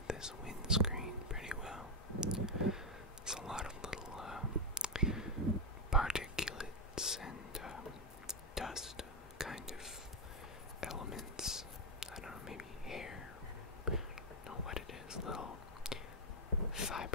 this windscreen pretty well. There's a lot of little particulates and dust kind of elements. I don't know, maybe hair. I don't know what it is. Little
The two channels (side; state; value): both; normal; correlation 0.04